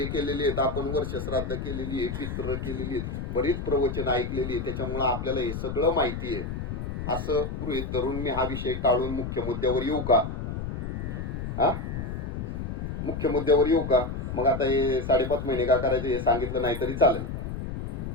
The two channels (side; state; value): left; noise; rumble, 5 dB below the sound